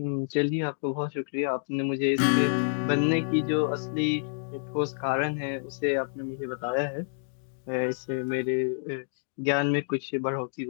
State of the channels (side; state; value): right; silent; digital silence